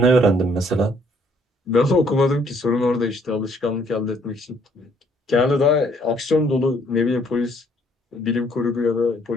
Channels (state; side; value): normal; both; correlation 0.65